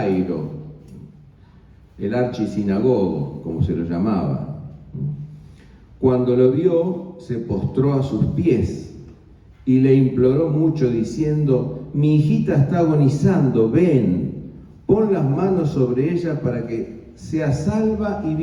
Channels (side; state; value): both; identical; correlation 1.00